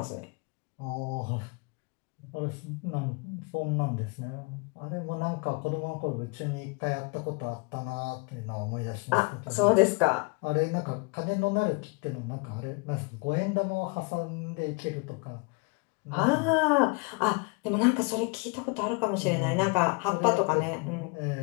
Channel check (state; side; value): quieter; right; 31.0 dB